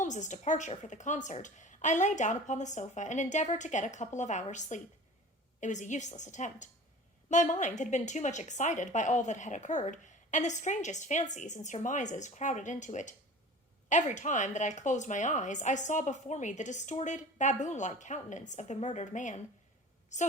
departure for the concert, I lay down upon the sofa and endeavored to get a couple of hours' sleep. It was a useless attempt. My mind had been too much excited by all that had occurred, and the strangest fancies and surmises crowded into it. Every time that I closed my eyes, I saw before me the distorted, baboon-like countenance of the murdered man.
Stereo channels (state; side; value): normal; both; correlation 0.40